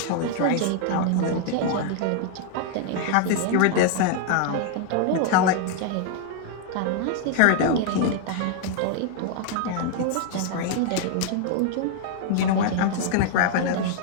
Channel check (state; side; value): different; both; correlation 0.00